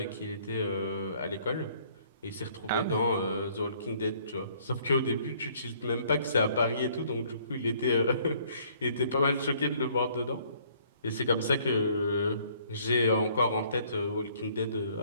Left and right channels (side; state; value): both; inverted; correlation -0.61